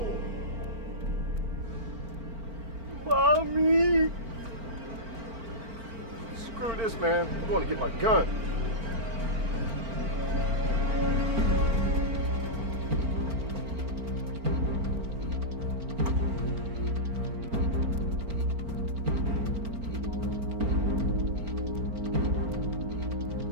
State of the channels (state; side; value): late; left; 4.4 ms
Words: Mommy! Screw this, man. I'm going to get my gun.